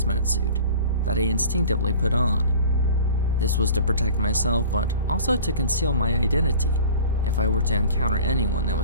suit that I instinctively put on. This was to protect myself, but also to conceal my identity if I were to encounter anyone that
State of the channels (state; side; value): inverted; both; correlation -0.42